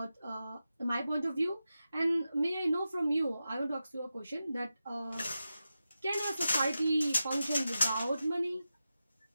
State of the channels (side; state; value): both; inverted; correlation -0.92